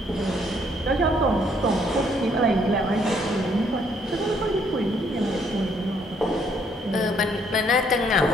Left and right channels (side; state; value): both; normal; correlation 0.67